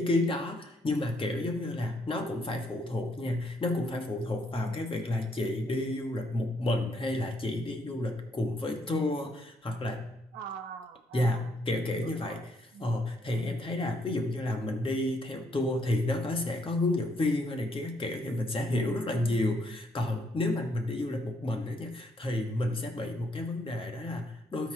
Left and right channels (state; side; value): normal; both; correlation 0.72